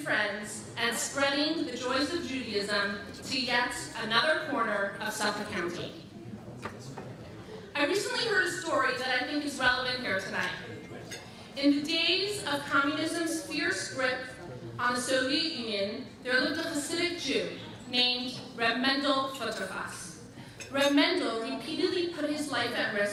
and spreading the joys of Judaism to yet another corner of Suffolk County. I recently heard a story that I think is relevant here tonight. In the days of communism's fierce grip on the Soviet Union, there lived a Hasidic Jew named Reb Mendel Futterfass. Reb Mendel repeatedly put his life at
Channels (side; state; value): both; identical; correlation 1.00